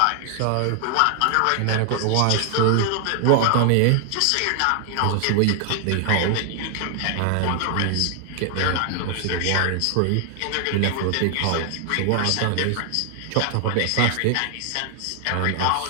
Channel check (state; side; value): different; both; correlation 0.00